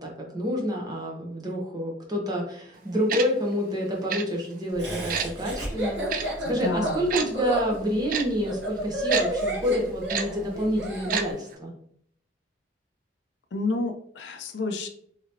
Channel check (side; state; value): both; normal; correlation 0.41